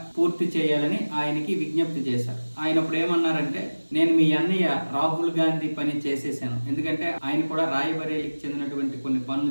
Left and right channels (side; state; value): both; inverted; correlation -1.00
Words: పూర్తి చేయాలని ఆయనకి విజ్ఞప్తి చేశారు. ఆయన ఇప్పుడు ఏమన్నారంటే, నేను మీ అన్నయ్య రాహుల్ గాంధీ పని చేసేసాను. ఎందుకంటే ఆయన కూడా రాయబరేలీకి చెందినటువంటి కొన్ని